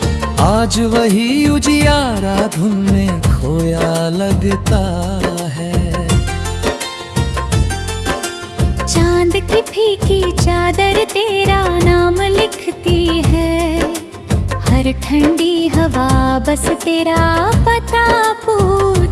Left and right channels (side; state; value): both; identical; correlation 1.00